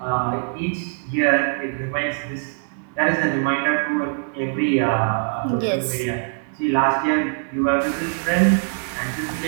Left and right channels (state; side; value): silent; left; digital silence